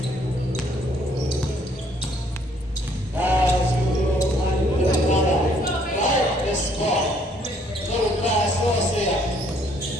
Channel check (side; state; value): both; normal; correlation 0.64